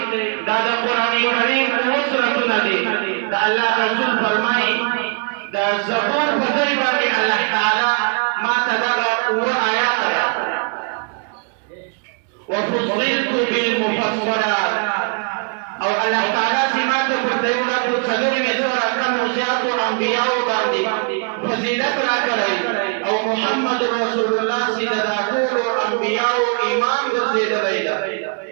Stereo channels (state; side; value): quieter; left; 38.4 dB